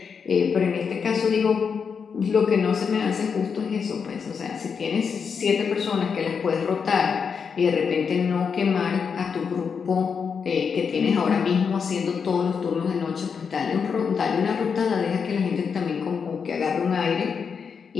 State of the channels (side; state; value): right; quieter; 6.2 dB